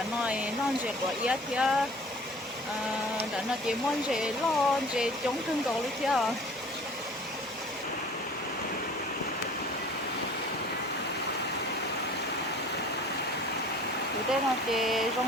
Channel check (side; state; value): both; normal; correlation 0.47